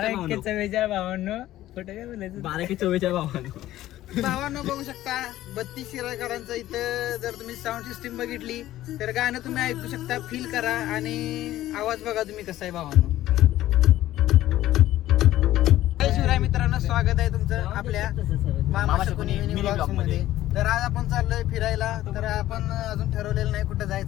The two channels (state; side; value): quieter; right; 14.4 dB